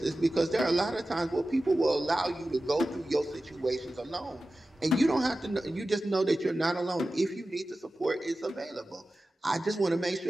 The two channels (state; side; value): normal; both; correlation 0.95